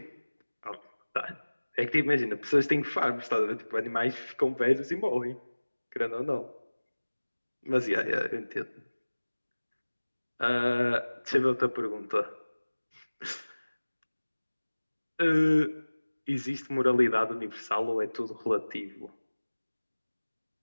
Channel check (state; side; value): inverted; both; correlation -1.00